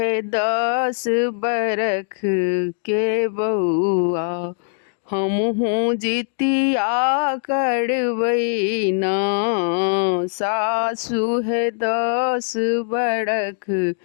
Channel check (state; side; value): silent; right; digital silence